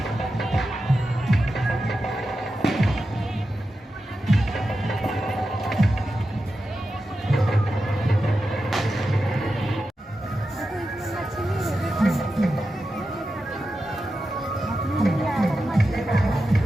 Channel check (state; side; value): normal; both; correlation 0.90